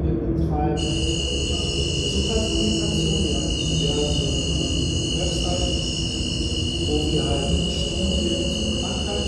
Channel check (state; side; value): identical; both; correlation 1.00